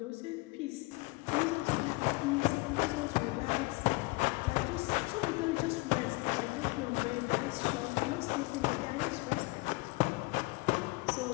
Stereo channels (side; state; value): right; quieter; 25.0 dB